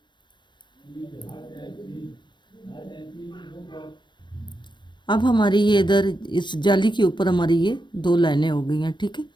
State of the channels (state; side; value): late; right; 0.22 ms